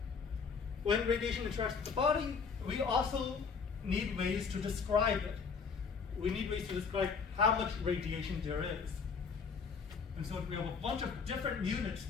when radiation interacts with the body, we also need ways to describe it. We need ways to describe how much radiation there is. And so we have a bunch of different units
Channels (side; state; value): right; quieter; 5.5 dB